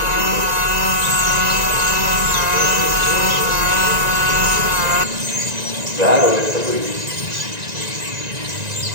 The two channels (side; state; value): left; late; 1.9 ms